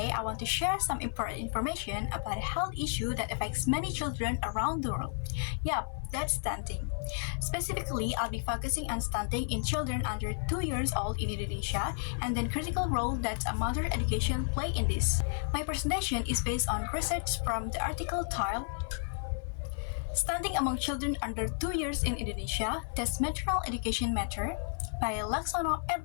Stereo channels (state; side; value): silent; right; 56 dB below the other